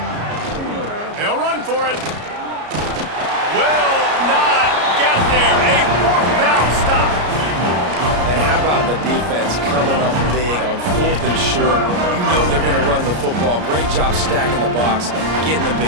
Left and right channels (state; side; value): late; left; 33 ms